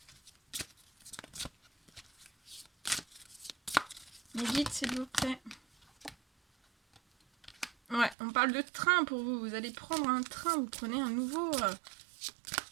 Mais vite, s'il vous plaît. Ouais, on parle de train pour vous. Vous allez prendre un train, vous prenez un nouveau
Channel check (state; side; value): drops out; left; at 8.2 s